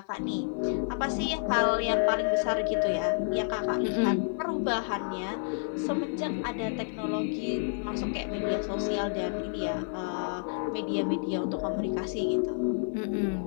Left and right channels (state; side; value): silent; right; digital silence